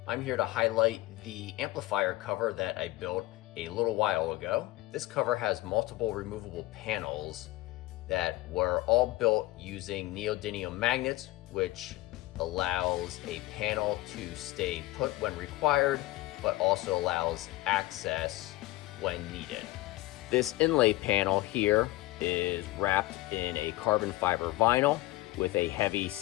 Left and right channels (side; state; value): right; quieter; 17.8 dB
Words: I'm here to highlight the amplifier cover that I built a little while ago. This cover has multiple removable panels that were all built using neodymium magnets, which allows a panel to stay put when required, but also allows access when needed. This inlay panel here is wrapped in a carbon fiber vinyl with a heavy